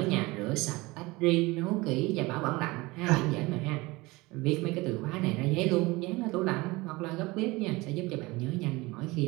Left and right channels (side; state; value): left; quieter; 22.2 dB